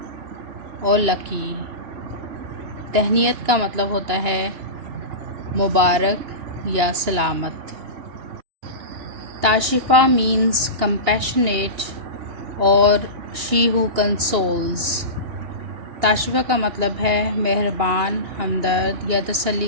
or lucky. تہنیت کا مطلب ہوتا ہے مبارک یا سلامت. تاشفہ means compassionate or she who consoles. تاشفہ کا مطلب ہے مہربان، ہمدرد یا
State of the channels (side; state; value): left; late; 2.8 ms